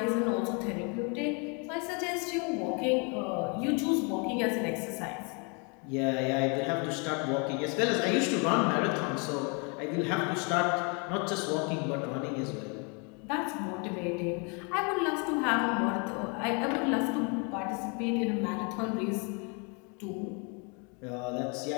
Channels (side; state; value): right; quieter; 34.3 dB